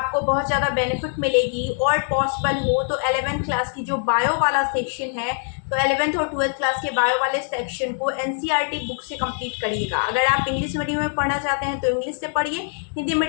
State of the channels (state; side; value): silent; right; 63 dB below the other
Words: बहुत ज़्यादा बेनिफिट मिलेगी। और पॉसिबल हो तो 11th क्लास की जो बायो वाला सेक्शन है, तो 11th और 12th क्लास के बायो वाले सेक्शन को एनसीईआरटी बुक से कंप्लीट करिएगा। अगर आप इंग्लिश मीडियम में पढ़ना चाहते हैं तो इंग्लिश से पढ़िए, हिंदी